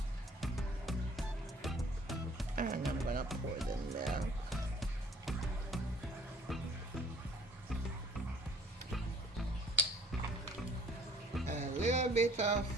And I'm gonna pour the milk. A little bit of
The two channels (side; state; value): both; normal; correlation 0.54